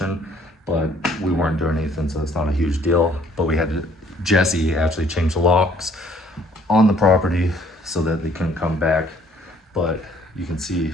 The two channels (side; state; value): both; normal; correlation 0.60